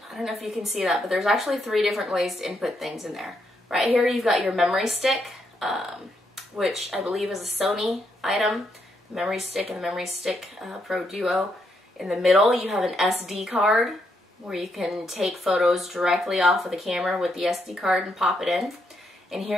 I don't know if you can see that, but there's actually 3 different ways to input things in there. Right here you've got your memory stick, which I believe is a Sony item, the memory stick and the memory stick Pro Duo. In the middle you have an SD card where you can take photos directly off of the camera with the SD card and pop it in. And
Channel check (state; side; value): normal; both; correlation 0.78